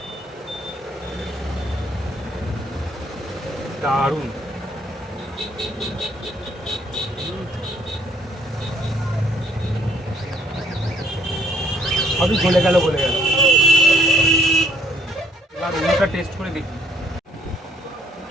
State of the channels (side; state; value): both; normal; correlation 0.64